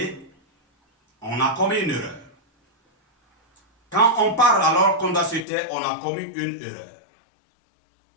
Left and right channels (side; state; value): right; drops out; at 5.5 s